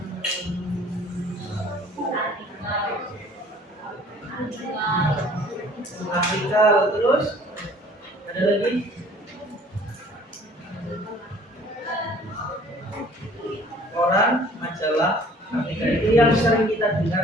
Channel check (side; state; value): both; normal; correlation 0.53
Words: Ada lagi? Koran, majalah, artikel itu yang sering kita